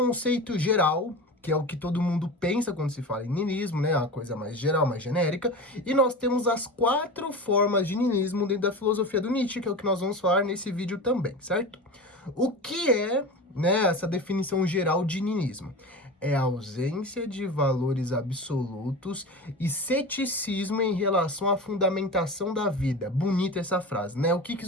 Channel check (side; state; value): both; normal; correlation 0.29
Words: geral, que é o que todo mundo pensa quando se fala em niilismo, né? A coisa mais geral, mais genérica. E nós temos as 4 formas de niilismo dentro da filosofia do Nietzsche, que é o que nós vamos falar nesse vídeo também, certo? O que é, né, essa definição geral de niilismo? É a ausência de valores absolutos e ceticismo em relação à fundamentação da vida. Bonita essa frase, né? O que